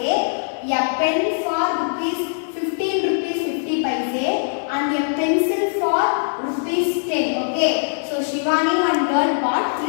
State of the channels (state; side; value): silent; right; 63 dB below the other